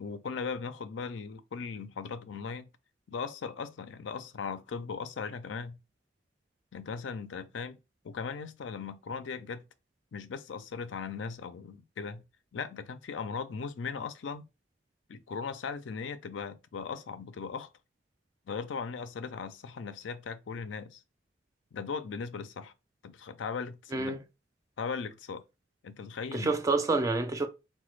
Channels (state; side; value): normal; both; correlation 0.26